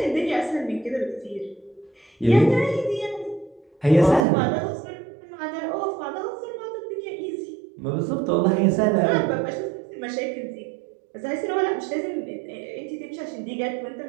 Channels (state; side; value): drops out; left; at 4.2 s